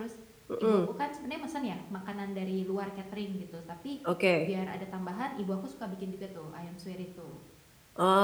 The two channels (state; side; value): identical; both; correlation 1.00